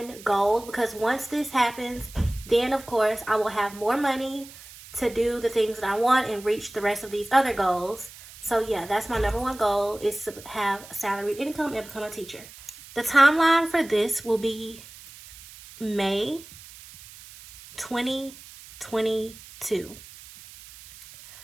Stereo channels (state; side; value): noise; right; hiss, 18 dB below the sound